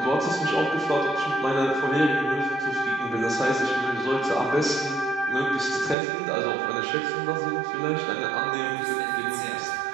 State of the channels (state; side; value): drops out; left; at 6.0 s